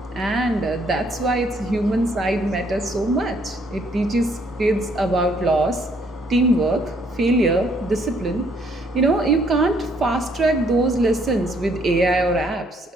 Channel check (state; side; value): normal; both; correlation 0.67